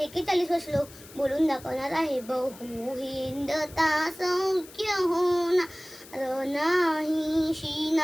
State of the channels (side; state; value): left; noise; hiss, 20 dB below the sound